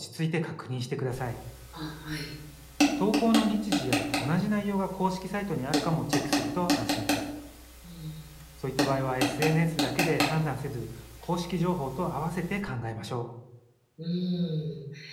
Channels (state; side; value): identical; both; correlation 1.00